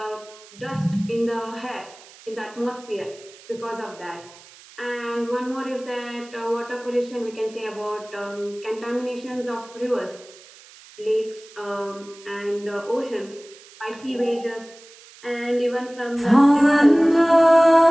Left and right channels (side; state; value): right; noise; hiss, 22 dB below the sound